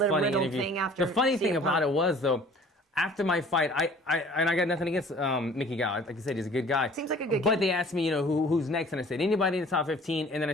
interview. The funny thing about it was, though, after my fight, I got nothing against Mickey Gall. Like you said, he's a good guy. Seems like a good But kid. they asked me, you know, who's next, and I said anybody in the top 15, and then I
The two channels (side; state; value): both; normal; correlation 0.50